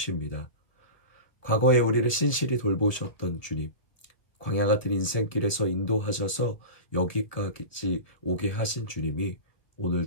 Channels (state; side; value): late; right; 1.9 ms